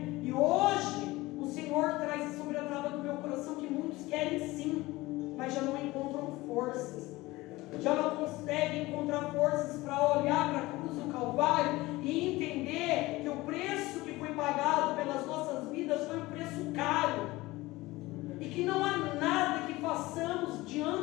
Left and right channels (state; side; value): quieter; right; 19.8 dB